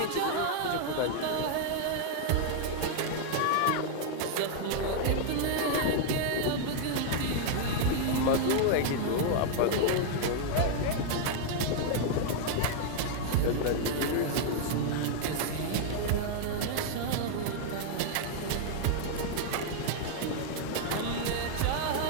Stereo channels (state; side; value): different; both; correlation 0.00